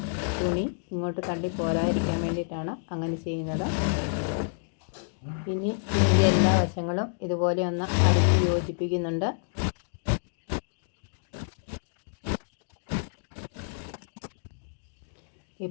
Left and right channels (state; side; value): silent; right; digital silence